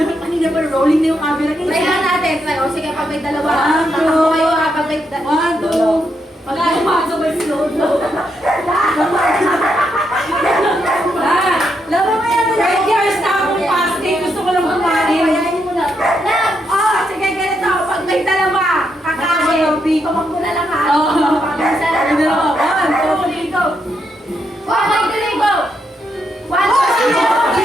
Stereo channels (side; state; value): both; normal; correlation 0.80